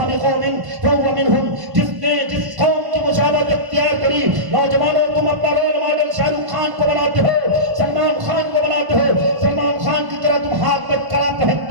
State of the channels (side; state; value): left; late; 1.0 ms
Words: بقوم فہو منہم، جس نے جس قوم کی مشابہت اختیار کری۔ نوجوانوں تم اپنا رول ماڈل شاہ رخ خان کو بناتے ہو، سلمان خان کو بناتے ہو، سلمان خان کی طرح تم ہاتھ میں کڑا